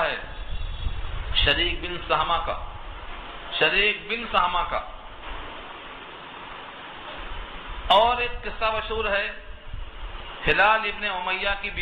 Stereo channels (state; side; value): identical; both; correlation 1.00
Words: ہے شریک بن سہمہ کا. شریک بن سہمہ کا. اور ایک قصہ مشہور ہے ہلال ابن امیہ کی